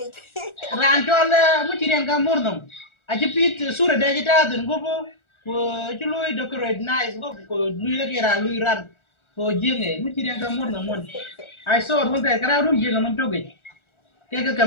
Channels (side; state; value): right; late; 1.4 ms